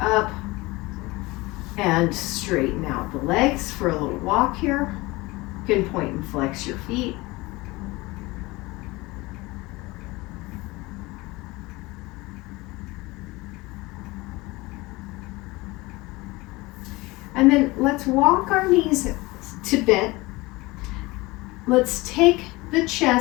up and straighten out the legs for a little walk here. You can point and flex your feet. And then let's walk our knees to bent. Let's take the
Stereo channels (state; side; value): quieter; right; 22.0 dB